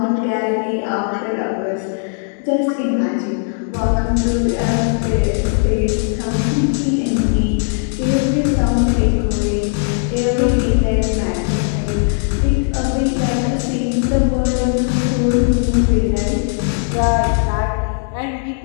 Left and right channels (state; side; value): silent; right; digital silence